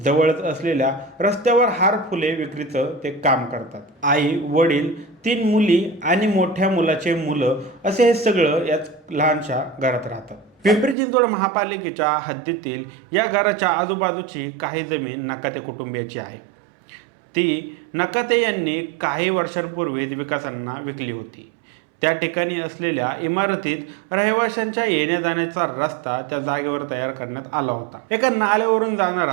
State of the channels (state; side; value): drops out; left; at 11.0 s